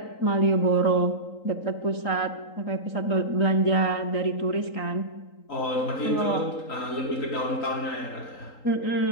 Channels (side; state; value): right; late; 3.8 ms